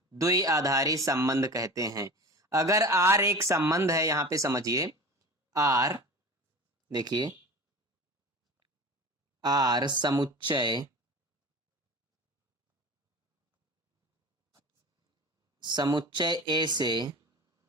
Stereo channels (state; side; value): normal; both; correlation 0.35